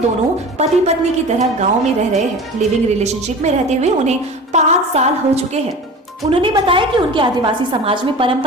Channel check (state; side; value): normal; both; correlation 0.36